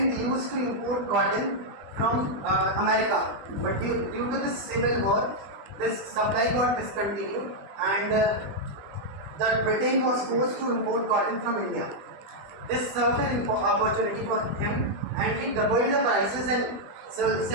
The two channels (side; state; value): left; late; 20 ms